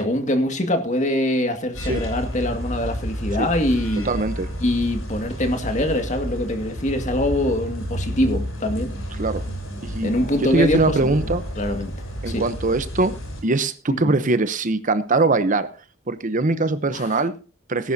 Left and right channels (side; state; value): both; normal; correlation 0.46